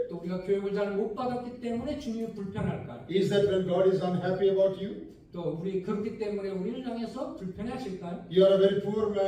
또 우리가 교육을 잘 못 받았기 때문에 주님이 불편할까요? Is that when God is unhappy about you? 또 우리 그렇기 때문에 우리를 향해서 불편해하실까요? You are a very poor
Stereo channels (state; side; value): identical; both; correlation 1.00